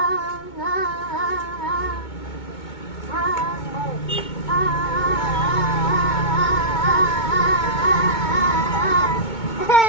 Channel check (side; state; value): right; late; 2.2 ms